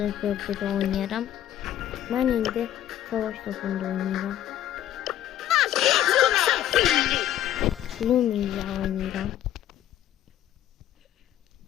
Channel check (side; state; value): right; quieter; 11.9 dB